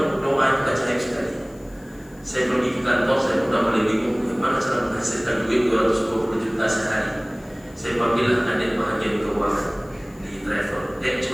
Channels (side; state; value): left; noise; hiss, 28 dB below the sound